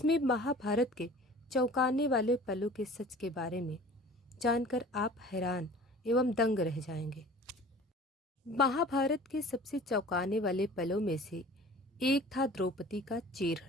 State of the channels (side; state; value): both; normal; correlation 0.44